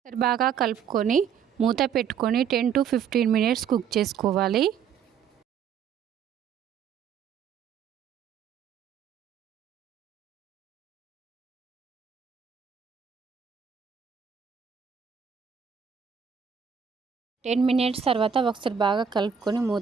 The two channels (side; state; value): left; quieter; 7.3 dB